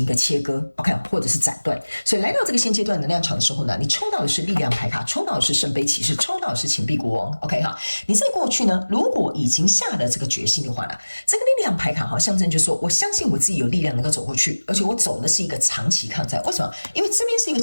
一個切割 ，OK， 或者是斬斷。所以來到這個現階段能量場的時候呢，你抽到的是力量牌卡，抽到的是聖杯騎士，抽到的是錢幣國王 ，OK 哈。你在過去呢，如果已經下了這個決心的話呢，這個力量牌卡象徵就是說，我相信我自己有力量能夠走過去，而且我走的是一個長期抗戰。為什麼？因為這邊是一個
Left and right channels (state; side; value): inverted; both; correlation -1.00